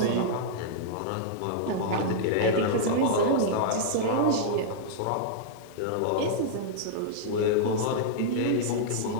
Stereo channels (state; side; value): different; both; correlation -0.02